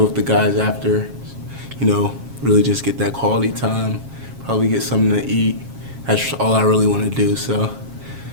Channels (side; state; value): left; late; 7.4 ms